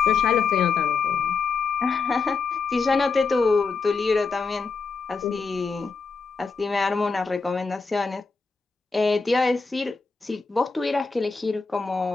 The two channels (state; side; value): quieter; right; 4.8 dB